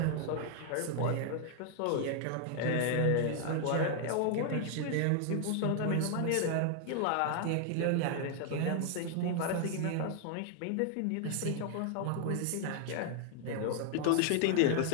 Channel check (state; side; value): different; both; correlation 0.00